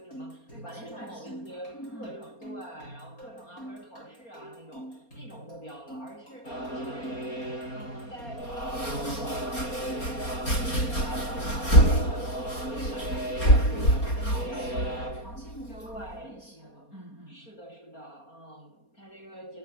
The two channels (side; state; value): right; late; 4.3 ms